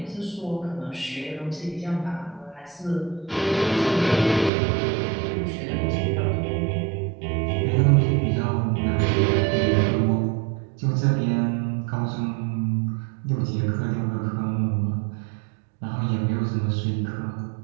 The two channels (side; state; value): left; drops out; at 4.5 s